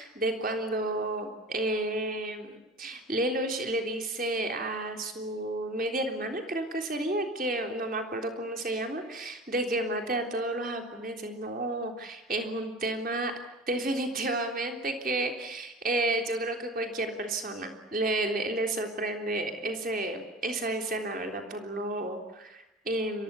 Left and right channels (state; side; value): normal; both; correlation 0.36